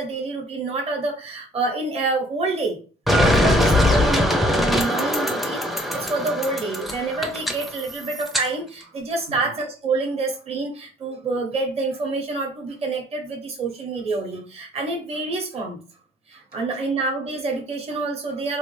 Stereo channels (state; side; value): normal; both; correlation 0.59